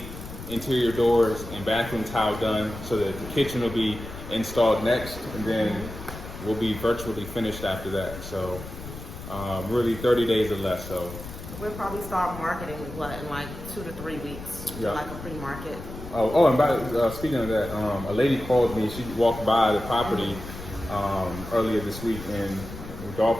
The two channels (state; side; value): noise; left; rumble, 12 dB below the sound